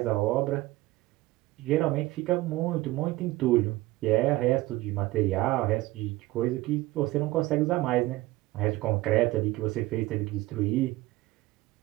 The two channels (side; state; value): left; quieter; 18.7 dB